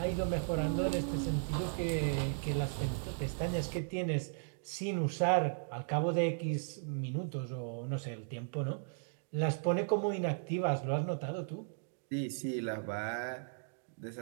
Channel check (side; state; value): left; silent; digital silence